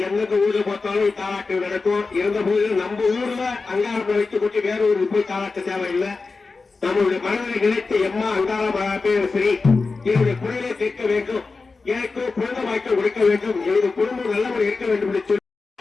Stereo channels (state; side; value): quieter; right; 4.1 dB